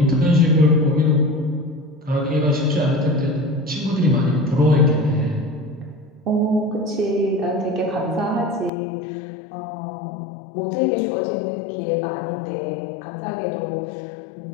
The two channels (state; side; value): drops out; right; at 8.7 s